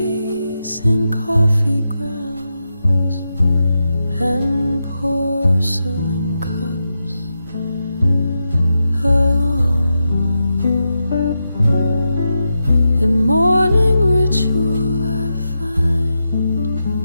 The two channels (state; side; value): inverted; both; correlation -0.88